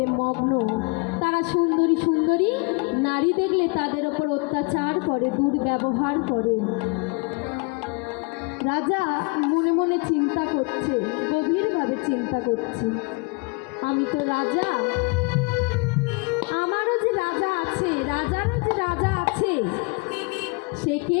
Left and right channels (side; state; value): right; quieter; 30.0 dB